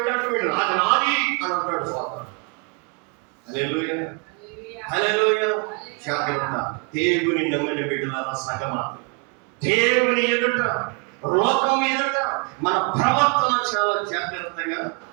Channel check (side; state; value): left; quieter; 34.0 dB